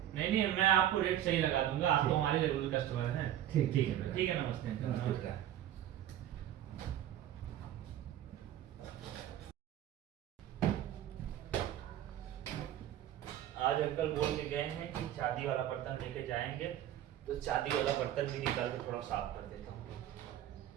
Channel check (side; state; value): left; quieter; 11.7 dB